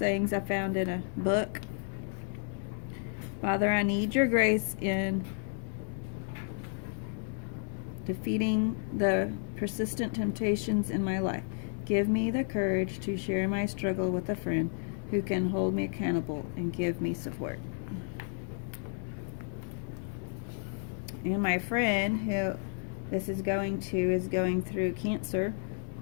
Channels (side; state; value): right; silent; 56 dB below the other